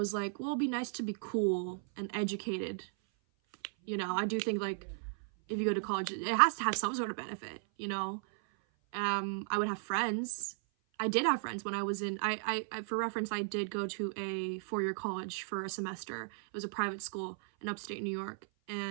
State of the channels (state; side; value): silent; left; 54 dB below the other